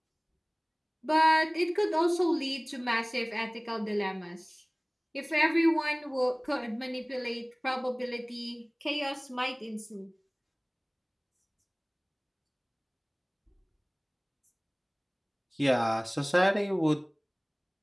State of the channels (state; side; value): identical; both; correlation 1.00